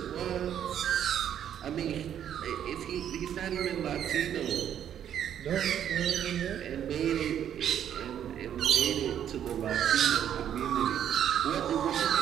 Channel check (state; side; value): quieter; left; 9.8 dB